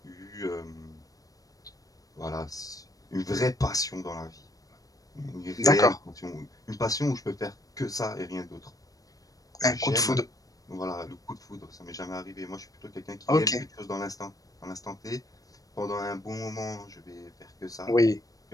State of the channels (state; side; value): late; right; 0.17 ms